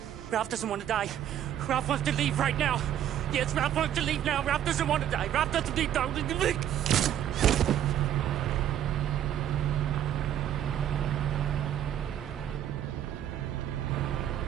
Ralph doesn't want to die. Ralph wants to leave right now. Yes, Ralph wants to leave now. Ralph doesn't want to die. Ralph doesn't need to.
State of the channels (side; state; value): left; quieter; 10.7 dB